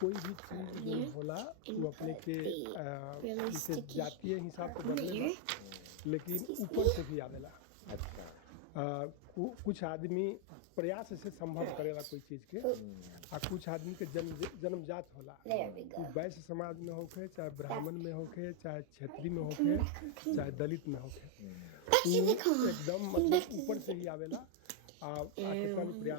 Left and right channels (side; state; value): both; different; correlation 0.00